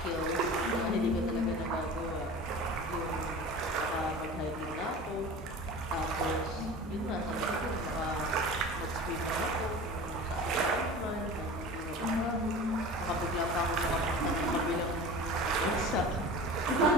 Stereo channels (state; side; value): normal; both; correlation 0.36